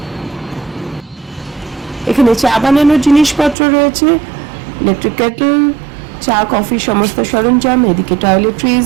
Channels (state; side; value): drops out; left; at 3.6 s